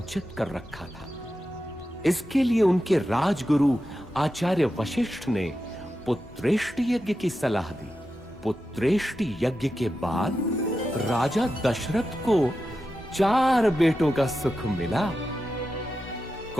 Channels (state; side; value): normal; both; correlation 0.90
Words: कर रखा था। इसके लिए उनके राजगुरु आचार्य वशिष्ठ ने पुत्रेष्टि यज्ञ की सलाह दी। पुत्रेष्टि यज्ञ के बाद राजा दशरथ को 4 बेटों का सुख मिला।